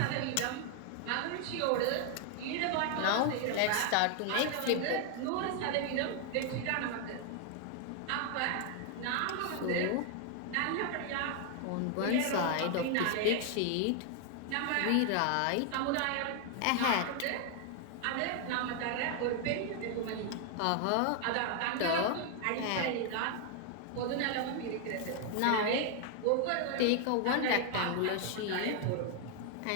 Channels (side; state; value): both; different; correlation 0.00